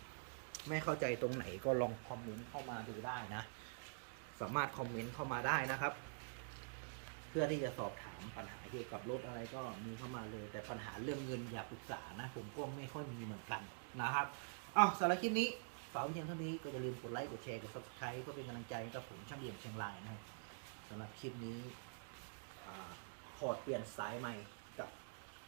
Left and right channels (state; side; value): silent; left; digital silence